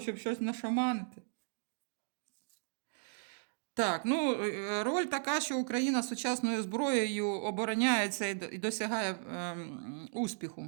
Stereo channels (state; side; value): silent; left; digital silence